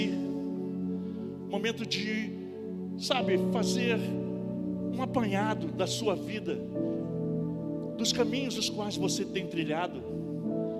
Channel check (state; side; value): identical; both; correlation 1.00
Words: um momento de, fazer um apanhado da sua vida, dos caminhos os quais você tem trilhado,